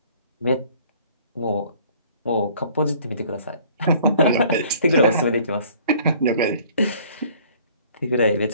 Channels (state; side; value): inverted; both; correlation -0.55